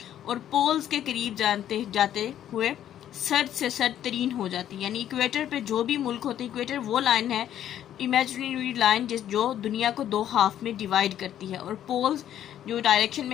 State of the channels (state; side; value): quieter; right; 11.0 dB